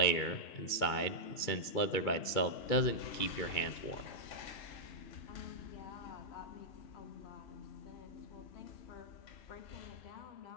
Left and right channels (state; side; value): late; right; 2.3 ms